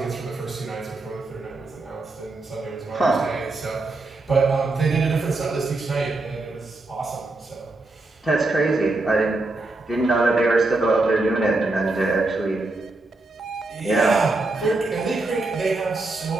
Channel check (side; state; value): left; quieter; 3.1 dB